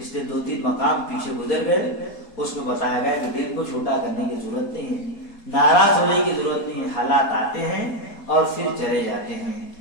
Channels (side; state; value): right; late; 4.2 ms